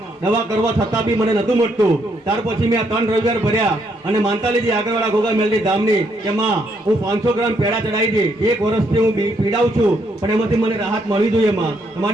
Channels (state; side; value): normal; both; correlation 0.74